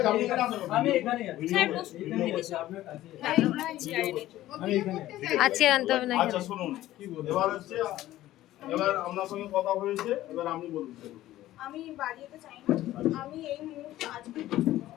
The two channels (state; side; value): quieter; right; 14.8 dB